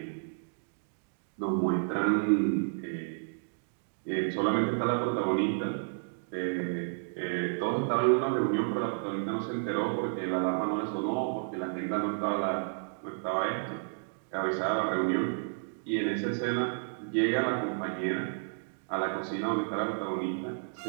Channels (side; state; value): left; silent; digital silence